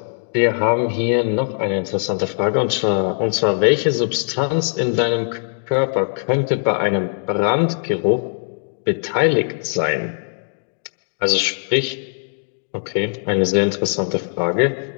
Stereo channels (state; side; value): silent; right; digital silence